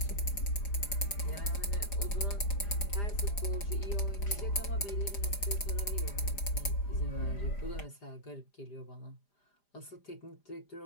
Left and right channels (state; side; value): late; right; 5.0 ms